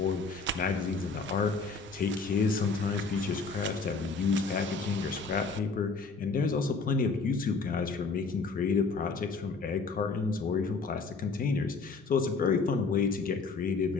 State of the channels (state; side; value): quieter; right; 4.4 dB